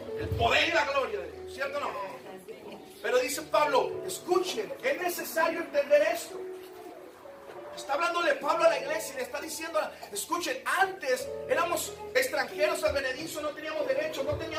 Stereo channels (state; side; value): identical; both; correlation 1.00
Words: El poder y la gloria de Dios, ¿cierto o no? Pero dice Pablo, escuchen, es necesario entender esto. Está hablándole Pablo a la iglesia y le está diciendo, escuchen, antes éramos extranjeros advenedizos, no teníamos derechos, no